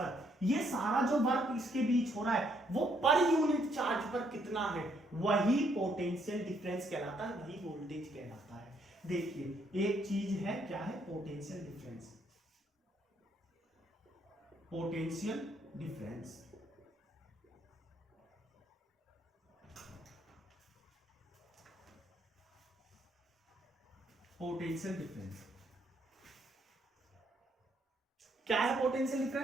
ये सारा जो वर्क इसके बीच हो रहा है वो पर यूनिट चार्ज पर कितना है, वही पोटेंशियल डिफरेंस कहलाता है, वही वोल्टेज कहलाता है। देखिए एक चीज है, क्या है, पोटेंशियल डिफरेंस। पोटेंशियल डिफरेंस क्या है पोटेंशियल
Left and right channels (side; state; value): both; normal; correlation 0.71